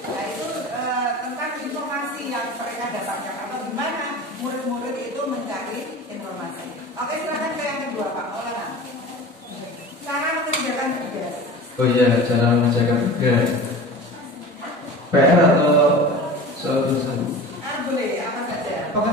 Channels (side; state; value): both; normal; correlation 0.35